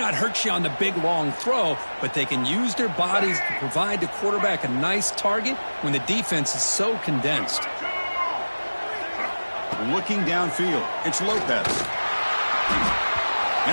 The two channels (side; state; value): both; inverted; correlation -1.00